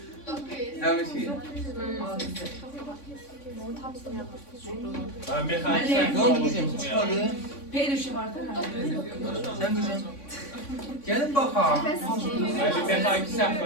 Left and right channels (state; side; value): late; right; 3.5 ms